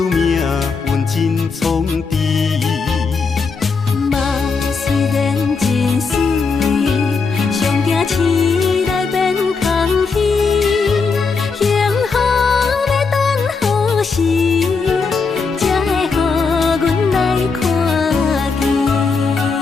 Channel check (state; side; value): quieter; right; 4.8 dB